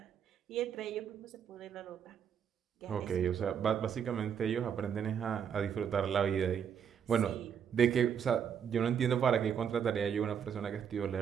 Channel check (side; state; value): left; quieter; 7.9 dB